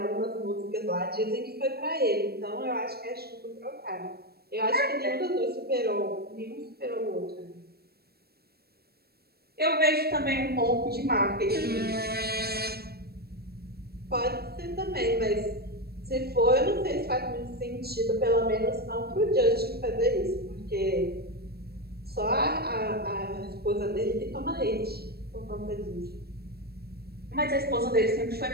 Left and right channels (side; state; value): left; late; 0.46 ms